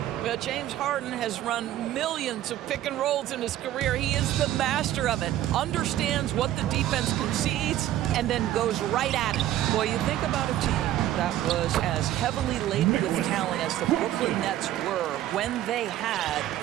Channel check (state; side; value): quieter; left; 13.1 dB